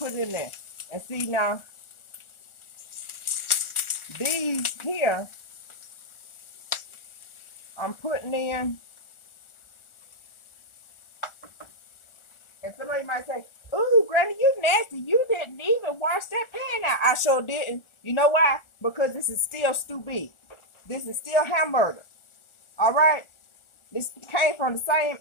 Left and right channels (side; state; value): right; late; 1.4 ms